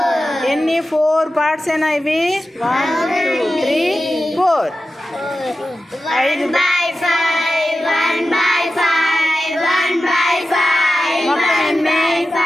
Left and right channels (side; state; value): both; normal; correlation 0.93